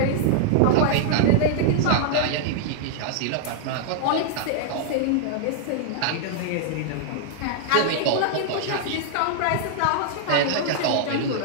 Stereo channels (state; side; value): different; both; correlation -0.01